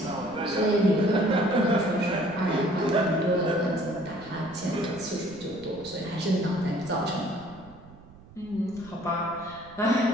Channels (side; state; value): right; noise; rumble, 21 dB below the sound